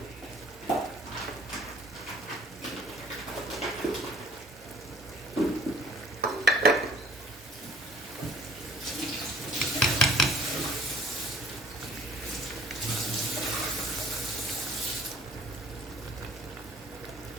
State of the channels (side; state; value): both; normal; correlation 0.55